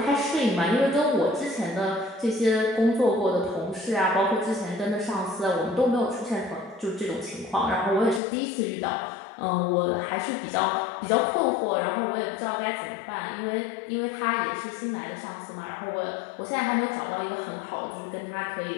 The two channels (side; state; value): right; drops out; at 8.2 s